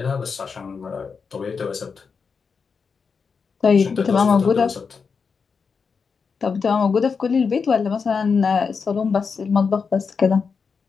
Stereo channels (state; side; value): quieter; right; 5.5 dB